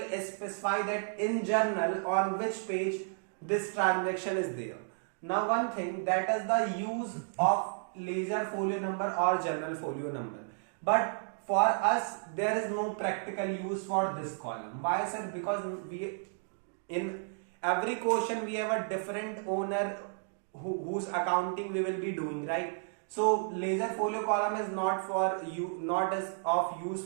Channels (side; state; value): left; silent; digital silence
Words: specify that in journal on which page this transaction is there. Now one thing, that is the use of ledger folio number or journal folio number, but for us there is no practical use for this column. Why sir? Because we in every question we have a different owner whose accounting we will be doing, right? So ledger folio column is not for you, not as of use